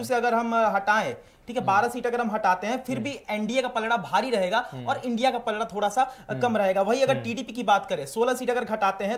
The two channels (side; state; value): both; identical; correlation 1.00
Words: से अगर हम हटाएं, ठीक है, 12 सीट अगर हम हटाते हैं, फिर भी एनडीए का पलड़ा भारी रहेगा और इंडिया का पलड़ा थोड़ा सा कम रहेगा। वही अगर TDP की बात करें, 16 सीट अगर घटाते